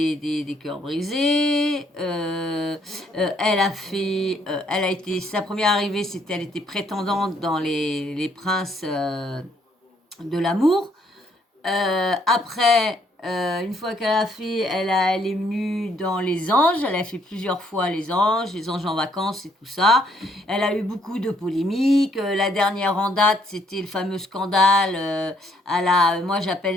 cœurs brisés. Elle a été, sa première arrivée, c'était, elle était prétendante dans les princes de l'amour. Après, une fois qu'elle a fait, elle est venue dans les anges. Elle a fait plusieurs fois les anges en vacances et tout ça. Elle a eu beaucoup de polémiques. La dernière en date, c'était le fameux scandale moi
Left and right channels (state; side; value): normal; both; correlation 0.69